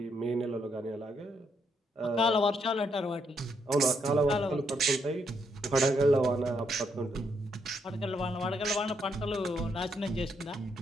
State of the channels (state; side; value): normal; both; correlation 0.76